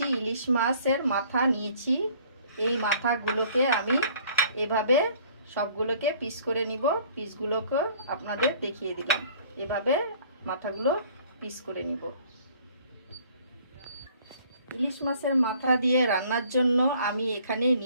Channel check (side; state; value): both; inverted; correlation -0.56